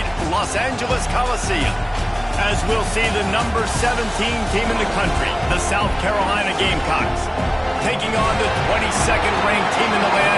Los Angeles Coliseum. As we'll see the number 17 team in the country, the South Carolina Gamecocks, taking on the 22nd ranked team in the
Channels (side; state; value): both; identical; correlation 1.00